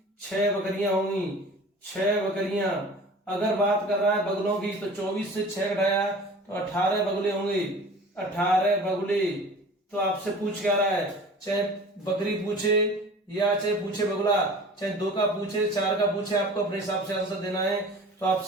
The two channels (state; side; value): normal; both; correlation 0.42